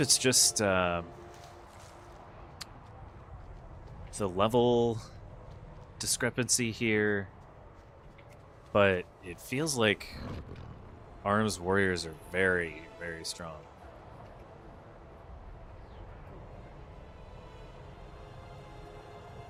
just the level discrepancy here, but it feels like Arms Warriors are very, very strong.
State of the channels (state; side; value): identical; both; correlation 1.00